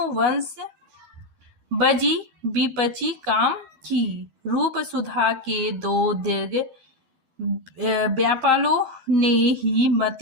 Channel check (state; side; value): late; left; 11 ms